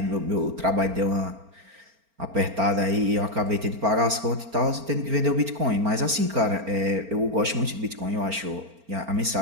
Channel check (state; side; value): late; left; 4.4 ms